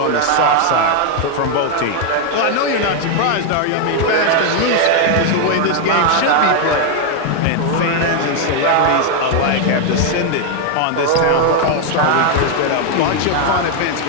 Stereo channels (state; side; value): different; both; correlation 0.01